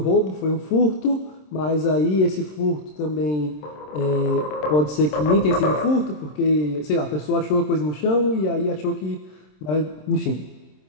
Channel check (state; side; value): late; right; 27 ms